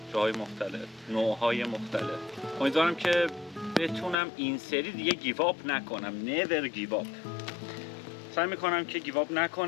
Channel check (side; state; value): right; drops out; at 4.2 s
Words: جاهای مختلف، نوعهای مختلف. امیدوارم که بتونم این سری دیگه گیو آپ نکنم. never give up. سعی میکنم که گیو آپ